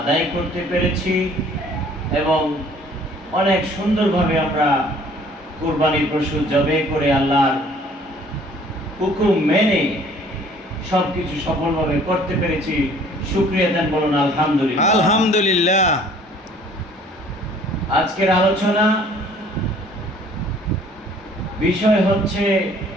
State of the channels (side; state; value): both; normal; correlation 0.55